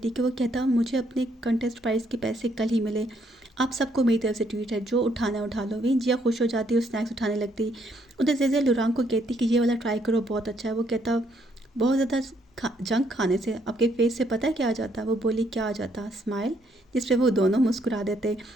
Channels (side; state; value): both; normal; correlation 0.71